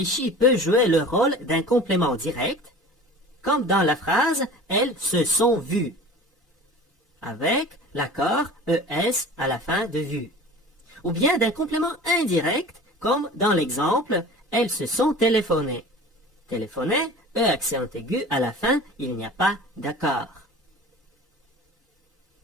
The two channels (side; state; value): both; normal; correlation 0.40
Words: peut jouer le rôle d'un complément direct, comme dans la phrase « Elles se sont vues », avec l'accord ES à la fin de vue. Ou bien d'un complément indirect, comme dans l'exemple « Elles se sont téléphonées ». Téléphoner E accent aigu à la fin, il n'y a pas d'accord.